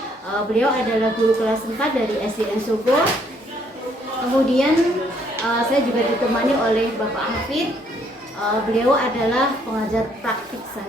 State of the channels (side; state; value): both; normal; correlation 0.67